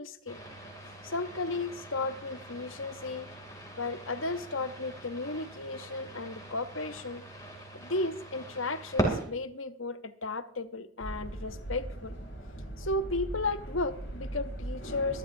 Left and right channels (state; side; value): normal; both; correlation -0.04